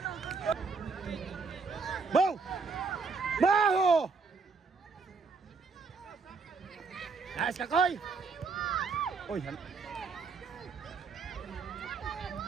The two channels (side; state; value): left; quieter; 4.7 dB